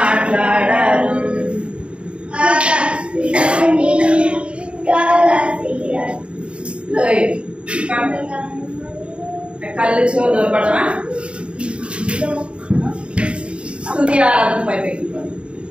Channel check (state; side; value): late; left; 0.057 ms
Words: కళ్ళు చెవులు పడవా స్తుతి ఆరాధన పైపెట్టి